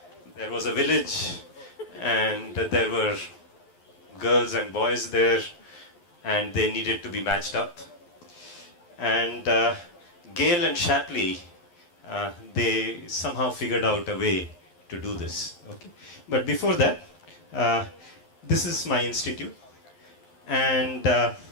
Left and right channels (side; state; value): right; late; 11 ms